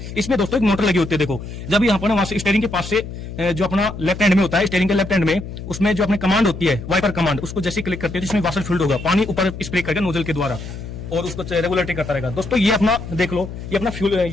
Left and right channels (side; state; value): left; noise; hum, 10 dB below the sound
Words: इसमें दोस्तों एक मोटर लगी होती है। देखो जब यहाँ पर वहां से स्टीयरिंग के पास से जो अपना लेफ्ट हैंड में होता है, स्टीयरिंग के लेफ्ट हैंड में, उसमें जो अपनी कमांड होती है वाइपर कमांड, उसको जैसे क्लिक करते हैं जिसमें वाशर फ्लूइड होगा, पानी ऊपर स्प्रे करके नोजल के द्वारा, और उसको रेगुलेटरी करता रहेगा दोस्तों। ये अपना देख लो, ये अपना फ्यूल,